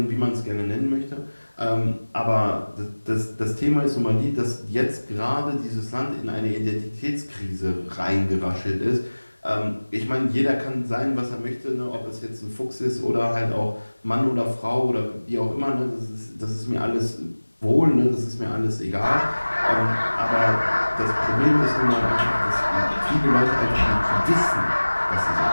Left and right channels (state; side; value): inverted; both; correlation -1.00